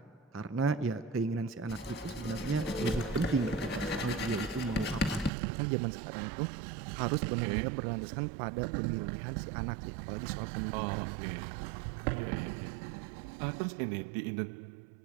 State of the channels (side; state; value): left; drops out; at 5.3 s